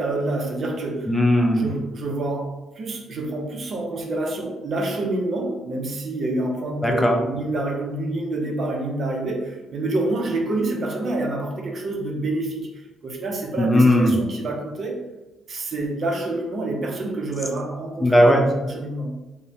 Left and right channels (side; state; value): both; normal; correlation 0.80